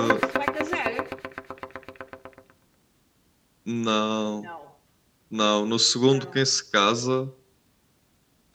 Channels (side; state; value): both; identical; correlation 1.00